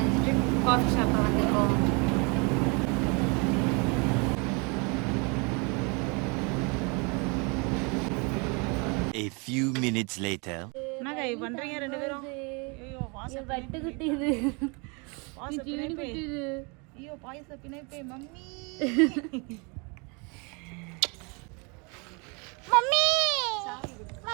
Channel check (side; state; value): left; quieter; 31.6 dB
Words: காஃபி ஷாப்பில் வந்துருக்கோம். A few minutes later. என்னங்க பண்றீங்க ரெண்டு பேரும்? ஐயோ வாச பட்டு குட்டிது. வாச பிணைப்பே. ஐயோ பாயச பிணைப்பே மம்மி. Mummy